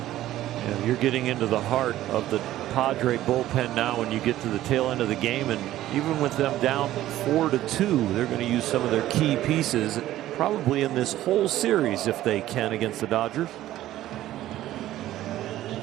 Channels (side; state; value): left; quieter; 14.1 dB